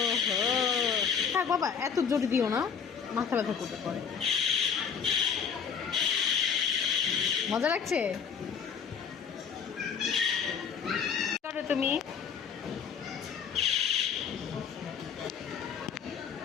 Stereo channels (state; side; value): quieter; right; 6.8 dB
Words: থাক বাবা, এত জোরে দিও না, মাথা ব্যথা করতে পারে। মজা লাগছে? করো তুমি।